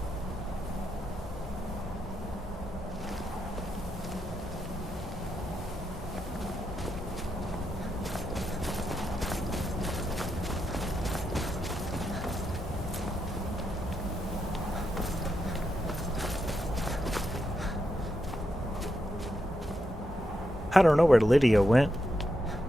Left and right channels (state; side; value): normal; both; correlation 0.84